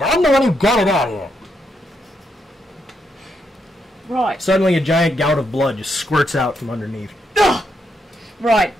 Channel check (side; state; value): both; normal; correlation 0.80